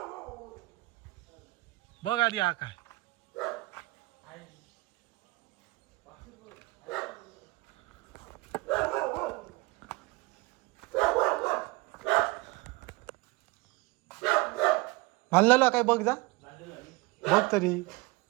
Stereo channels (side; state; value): left; quieter; 22.1 dB